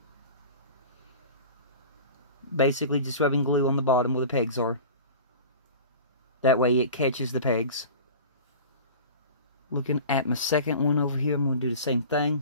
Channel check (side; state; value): both; inverted; correlation -0.37